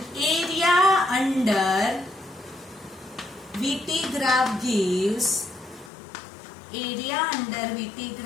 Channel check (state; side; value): drops out; right; at 5.9 s